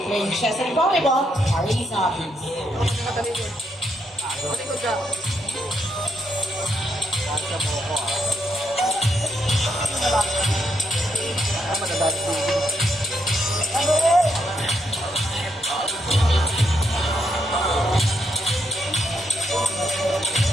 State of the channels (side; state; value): both; normal; correlation 0.79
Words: Playing chess and volleyball are his hobbies.